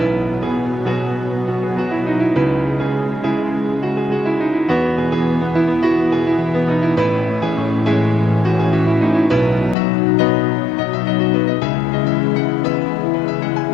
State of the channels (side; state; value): right; drops out; at 9.8 s